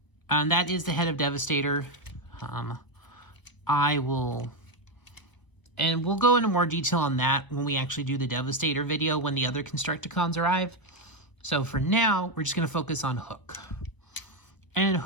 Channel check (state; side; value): late; right; 1.0 ms